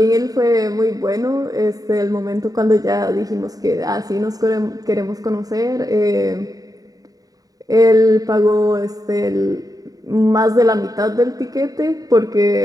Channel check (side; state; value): left; late; 0.18 ms